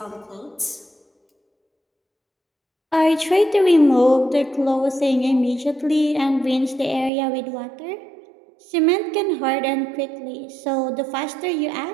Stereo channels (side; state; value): left; drops out; at 7.1 s